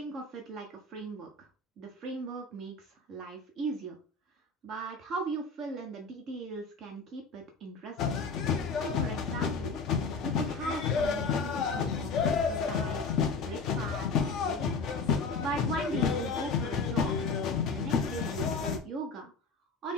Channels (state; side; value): quieter; right; 4.0 dB